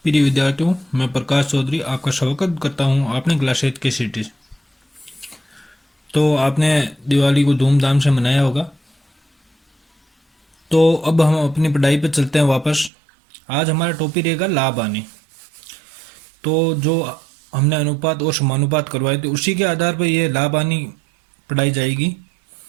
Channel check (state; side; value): drops out; left; at 12.9 s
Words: प्रिय विद्यार्थियों, मैं प्रकाश चौधरी आपका स्वागत करता हूं आपने क्लास 8 के सिटीज। तो आपने दिवाली को धूमधाम से मनाया होगा। तो अब हम अपनी पढ़ाई पर चलते हैं वापस। आज हमारा टॉपिक रहेगा लाभ हानि। तो जो हमने अनुपात और समानुपात करवाए थे उसी के आधार पर यह लाभ हानि पढ़ाई जाएगी।